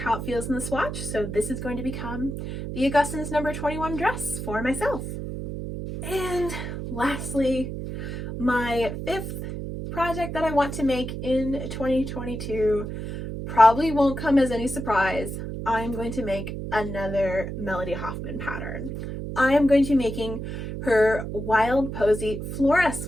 it feels in the swatch, so this is going to become the Augustine's number 21 dress for myself. And lastly, my fifth project that I want to make in 2022 probably won't come as any surprise. I'm going to make another Melody Hoffman pattern. I am going to be making her Wild Posy Flora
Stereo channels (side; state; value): right; noise; hum, 6 dB below the sound